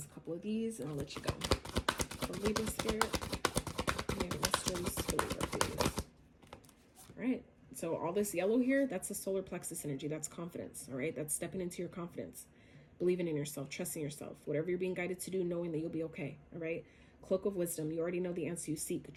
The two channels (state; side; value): identical; both; correlation 1.00